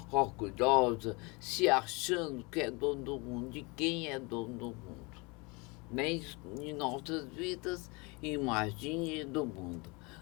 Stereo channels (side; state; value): right; quieter; 28.0 dB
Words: orgulhosa, se achando que é dono do mundo. De quem é dono do mundo? Nem de nossas vidas, imagine do mundo.